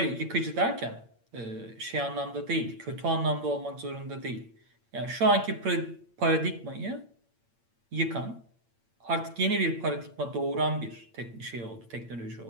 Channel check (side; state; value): left; late; 8.8 ms